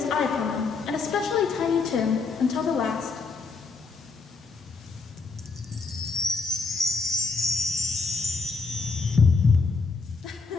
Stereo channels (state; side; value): quieter; right; 4.4 dB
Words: eye upon them, and especially Tiny Tim, until the last.